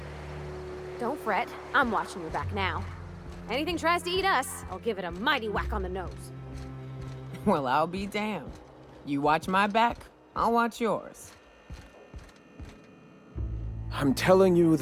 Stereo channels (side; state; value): both; identical; correlation 1.00